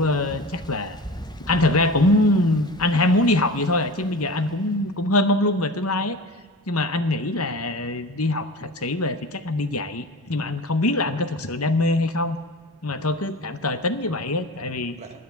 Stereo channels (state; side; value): normal; both; correlation 0.33